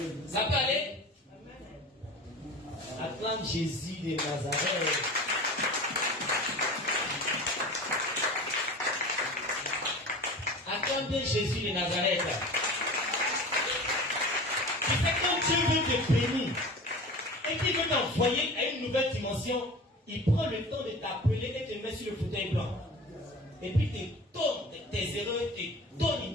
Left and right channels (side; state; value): both; normal; correlation 0.36